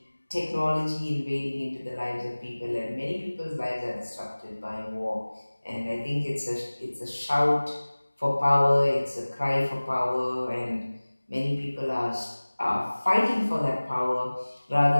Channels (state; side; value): inverted; both; correlation -1.00